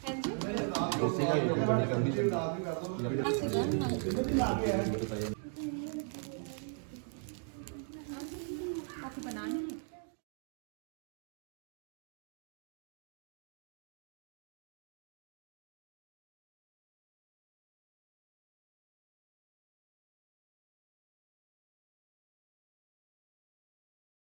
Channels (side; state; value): left; silent; 51 dB below the other